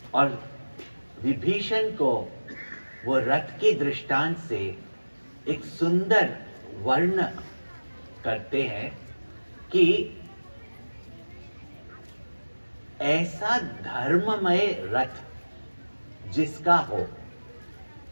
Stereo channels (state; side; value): inverted; both; correlation -1.00